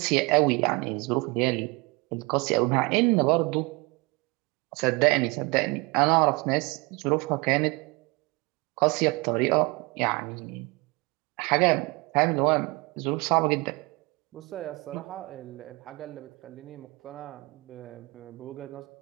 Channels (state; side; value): quieter; left; 26.2 dB